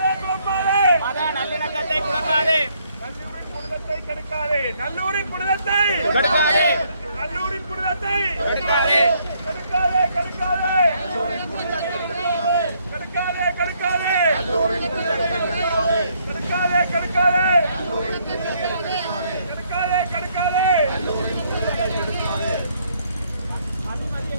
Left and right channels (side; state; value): both; inverted; correlation -0.69